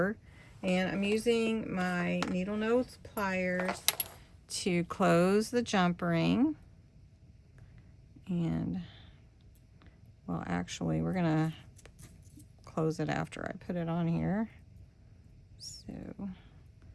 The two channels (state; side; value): identical; both; correlation 1.00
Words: And I'm using my needle nose pliers to close the jump ring. And, well, actually, we're going to close it after I put it on here. So